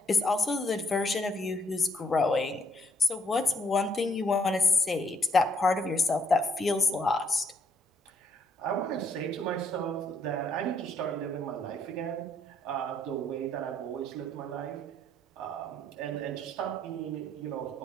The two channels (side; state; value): both; normal; correlation 0.69